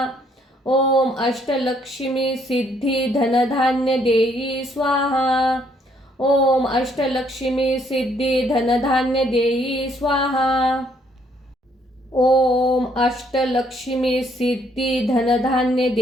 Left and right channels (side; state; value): both; normal; correlation 0.68